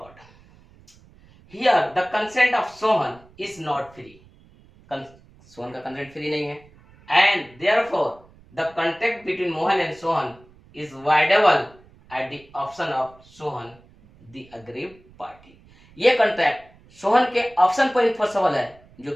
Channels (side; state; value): right; noise; rumble, 27 dB below the sound